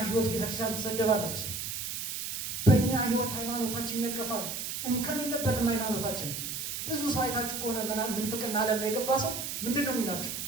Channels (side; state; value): right; noise; hiss, 4 dB below the sound